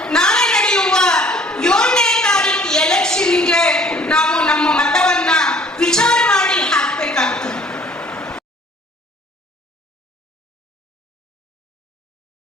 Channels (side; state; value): both; normal; correlation 0.55